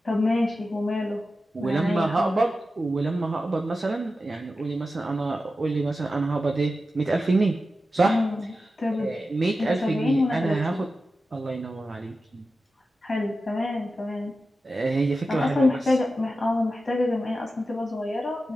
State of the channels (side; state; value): both; normal; correlation 0.92